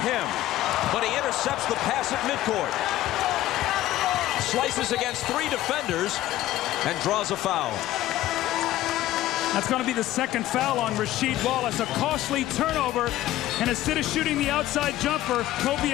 him. But he intercepts the pass at midcourt. Slices against 3 defenders and draws a foul. That's going to be the second foul on Rasheed Wallace. A costly turnover. And instead of shooting the outside jumper, Kobe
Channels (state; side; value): quieter; right; 14.7 dB